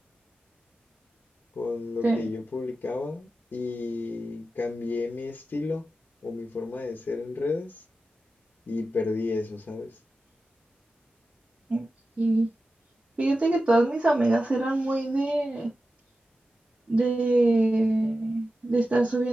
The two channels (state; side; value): normal; both; correlation 0.92